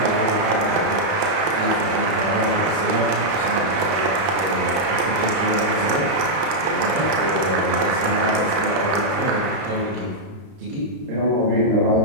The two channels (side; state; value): left; late; 31 ms